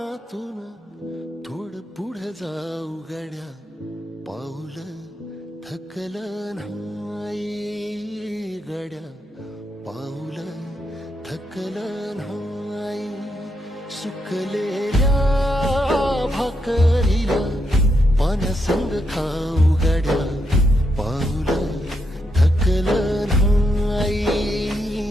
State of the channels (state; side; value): normal; both; correlation 0.81